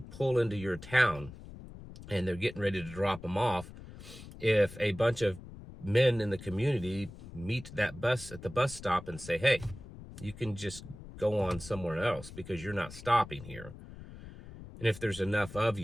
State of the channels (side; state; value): left; noise; rumble, 15 dB below the sound